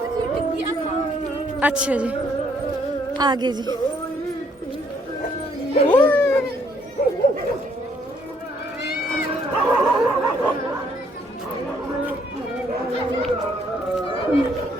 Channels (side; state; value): both; normal; correlation 0.67